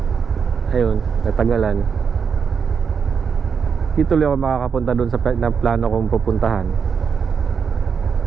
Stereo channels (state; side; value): quieter; left; 6.4 dB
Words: Ayun, natagalan. Di tuloy ako makakapunta dun sa plano kong pupuntahan.